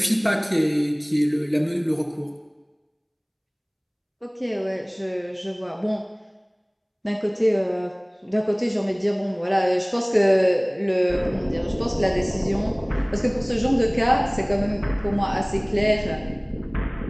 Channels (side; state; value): both; identical; correlation 1.00